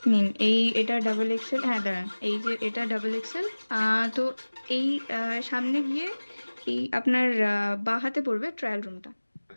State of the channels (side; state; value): both; inverted; correlation -1.00